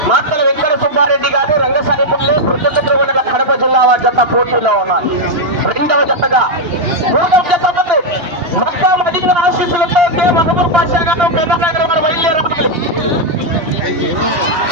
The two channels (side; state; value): left; late; 2.9 ms